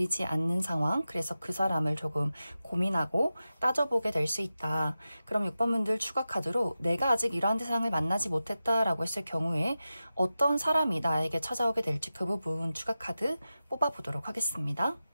않는 상황, 그래서 그 사람을 조금 고민하고 따져보게 될 수 있다. 그럼 6번 분들 추가 카드로 내가 아직 이러한 대상을 만나지 못했다라고 했을 경우에 어떤 사람이 나에게 찾아오게 될지 그 부분 추가 카드 뽑아보도록 하겠습니다.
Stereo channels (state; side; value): inverted; both; correlation -0.93